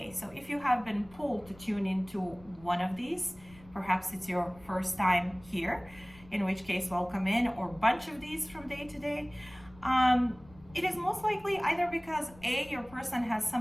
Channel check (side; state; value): left; noise; rumble, 23 dB below the sound